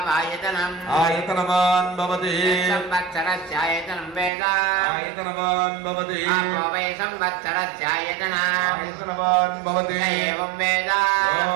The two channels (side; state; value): left; drops out; at 4.3 s